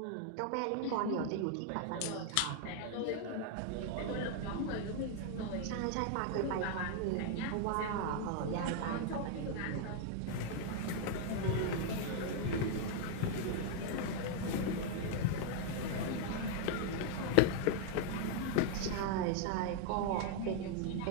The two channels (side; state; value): both; different; correlation 0.00